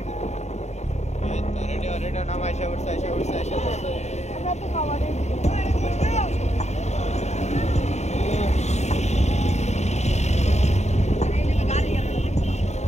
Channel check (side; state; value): right; late; 0.32 ms